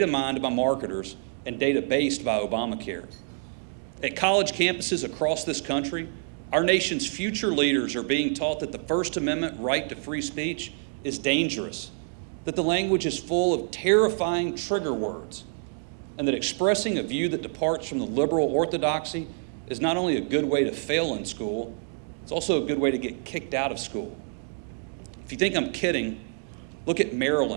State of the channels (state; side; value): silent; left; digital silence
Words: mined by marketers, and data based by Obamacare. At college campuses across this country, our nation's future leaders are being taught that the First Amendment right to free speech is dangerous, that the language is full of terrifying trigger words, and that expressing a view that departs from the liberal orthodoxy is not only a good way to fail in school, it's also a good way to get kicked out of school. If you think I'm kidding, look at